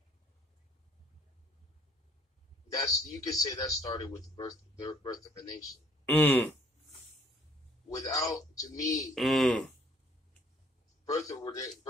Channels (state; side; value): normal; both; correlation 0.61